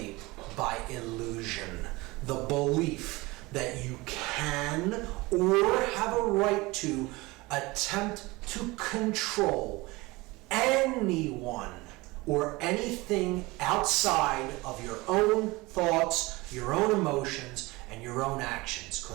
by illusion. The belief that you can or have a right to attempt to control anyone or anything outside of your own thoughts, your own emotions, and your own actions,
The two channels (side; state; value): left; quieter; 22.4 dB